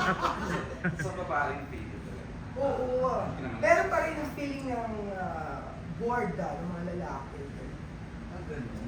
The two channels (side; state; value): both; identical; correlation 1.00